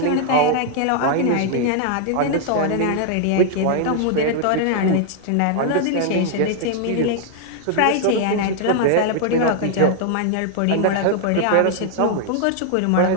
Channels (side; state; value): both; different; correlation 0.00